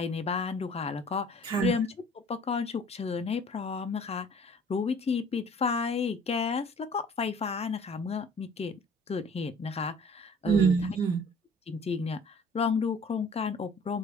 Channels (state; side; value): normal; both; correlation 0.50